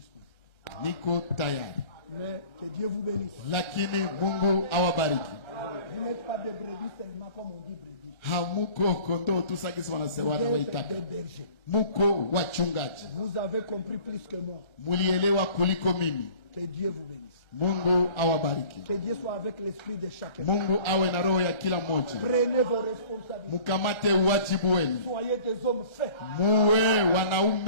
niko tayari. Mais que Dieu vous bénisse. Lakini Mungu awabariki. Vous n'êtes pas des brebis seulement comme on dit brebis. Hamuko kondoo tu sakisi wanasema Vous êtes waitaka. des bergers. Muko wachungaji. Vous avez compris plus que moi. Mulielewa kuliko mimi. Que Dieu vous bénisse. Mungu awabariki. Que Dieu soit avec l'esprit de chacun. Mungu awe na roho ya kila mmoja. Prenez vos responsabilités. Mukamate uwajibu wenu. Soyez des hommes faits. Muwe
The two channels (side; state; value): right; late; 1.3 ms